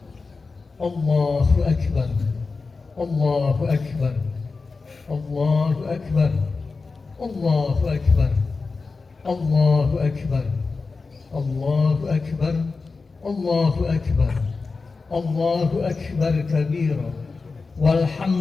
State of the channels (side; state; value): right; quieter; 4.2 dB